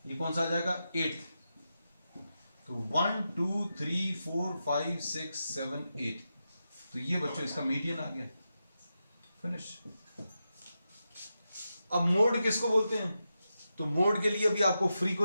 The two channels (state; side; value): inverted; both; correlation -0.88